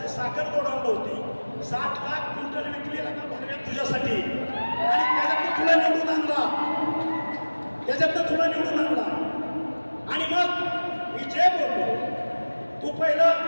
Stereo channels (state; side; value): inverted; both; correlation -1.00